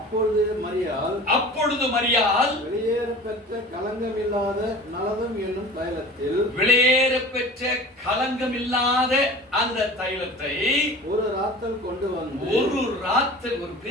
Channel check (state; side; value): normal; both; correlation 0.40